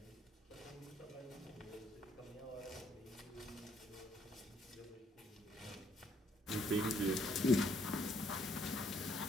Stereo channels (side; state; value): both; normal; correlation 0.69